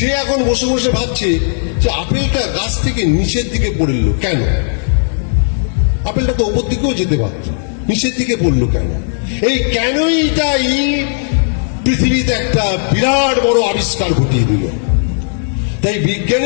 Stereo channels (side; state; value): right; silent; digital silence